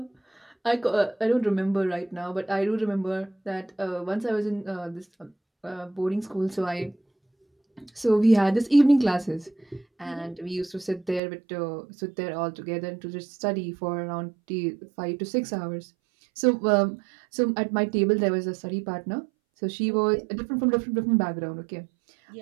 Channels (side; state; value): left; drops out; at 11.2 s